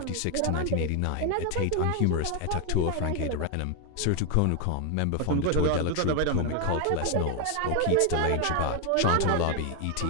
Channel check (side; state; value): both; different; correlation 0.01